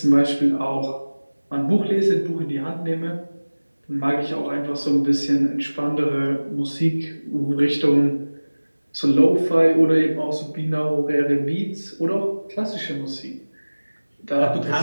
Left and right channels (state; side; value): inverted; both; correlation -1.00